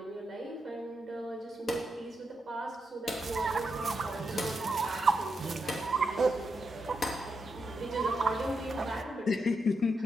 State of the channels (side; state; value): both; normal; correlation 0.84